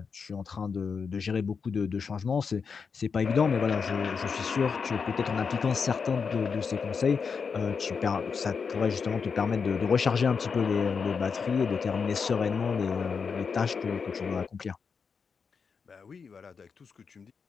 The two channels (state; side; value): quieter; right; 5.7 dB